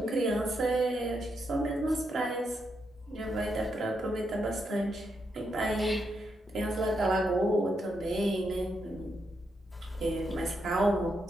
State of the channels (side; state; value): both; normal; correlation 0.81